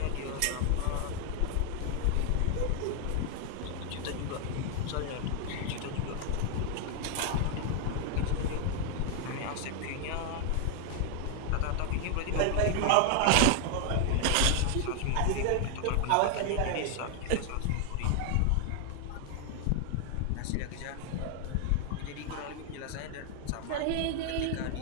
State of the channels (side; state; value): both; different; correlation 0.00